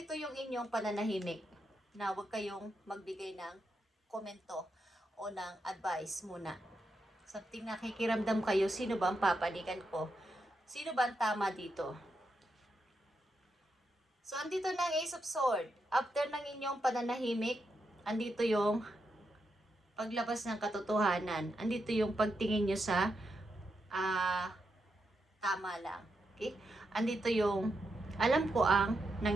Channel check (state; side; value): normal; both; correlation 0.84